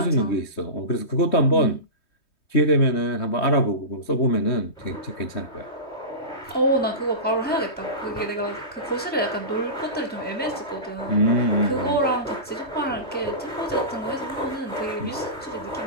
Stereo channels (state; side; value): late; right; 3.2 ms